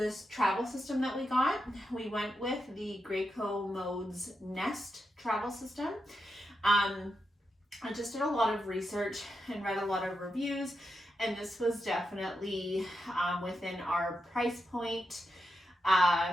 travel system that we got. We went with the Graco Modes Nest travel system. I just did a lot of research and read a lot of reviews, and this was definitely within our price point.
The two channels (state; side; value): normal; both; correlation 0.86